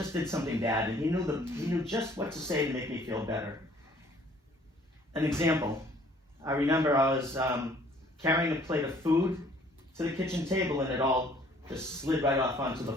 did something bad. And he knew just what to say to make me feel better. An example, I remember I was carrying a plate of food to the kitchen table and it all just slid right off onto the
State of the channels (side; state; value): both; normal; correlation 0.58